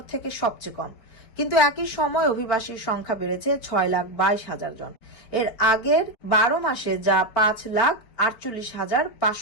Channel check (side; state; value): right; late; 4.5 ms